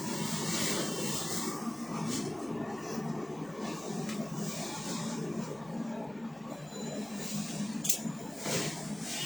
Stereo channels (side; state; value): right; noise; hum, 26 dB below the sound